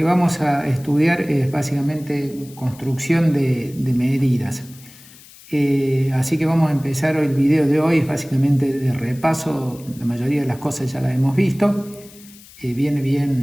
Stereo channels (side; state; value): left; noise; hiss, 22 dB below the sound